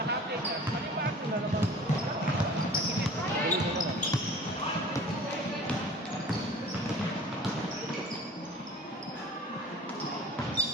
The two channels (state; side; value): normal; both; correlation 0.44